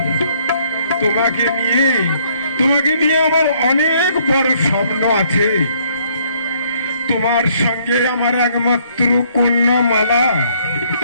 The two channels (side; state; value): both; inverted; correlation -0.65